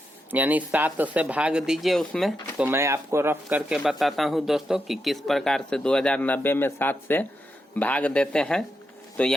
यानी 7 से भाग दीजिए उसमें। तो मैं आपको रफ करके बताता हूं दोस्तों कि किस प्रकार से 2090 में 7 से भाग देते हैं। तो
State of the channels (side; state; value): both; normal; correlation 0.85